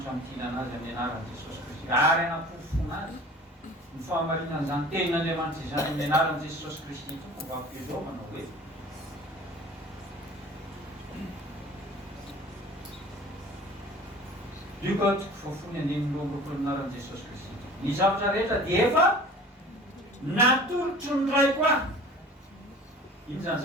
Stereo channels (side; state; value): both; normal; correlation 0.43